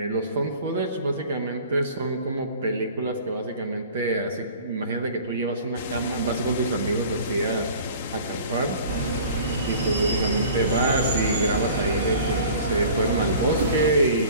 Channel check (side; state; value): both; inverted; correlation -0.45